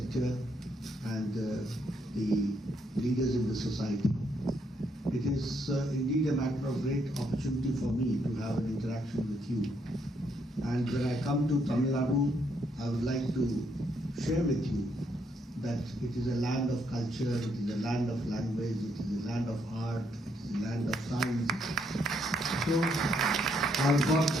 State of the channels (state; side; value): normal; both; correlation 0.74